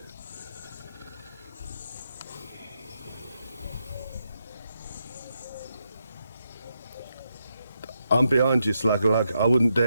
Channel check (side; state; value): both; inverted; correlation -0.82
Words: I'm behind you, Slugalug. I wouldn't